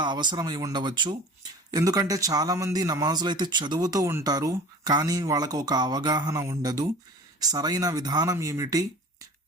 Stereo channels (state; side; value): normal; both; correlation 0.41